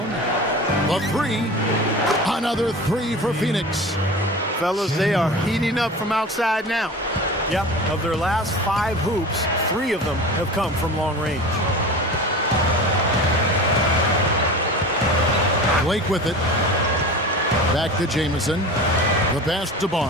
The 3. Another 3 for Phoenix. Fellas, they are heating up from outside now. Yep, of their last 5 hoops, 3 of them have come from long range. Blake with it. Back to Jamison. The pass to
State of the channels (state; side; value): normal; both; correlation 0.34